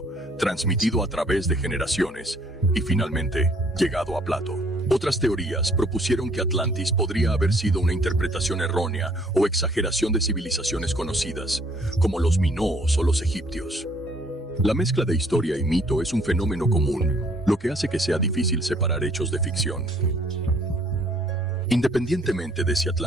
transmitido a través de generaciones, y finalmente llegado a Plato. Otras teorías propusieron que Atlantis podría haber sido una interpretación errónea o exageración de civilizaciones conocidas, como los minoos o los egipcios. La mezcla de historia y mito es un fenómeno común, lo que hace que sea difícil separar hechos de ficción. Independientemente de si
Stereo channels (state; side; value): normal; both; correlation 0.62